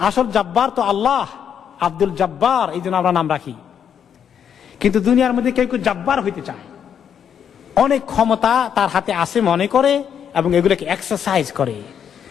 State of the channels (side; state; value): right; quieter; 8.3 dB